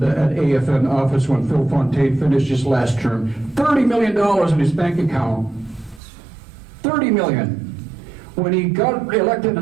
at AFN office when Phil Fontaine finished his last term. $30 million in his bank account. $30 million. When he got elected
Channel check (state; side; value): drops out; left; at 6.0 s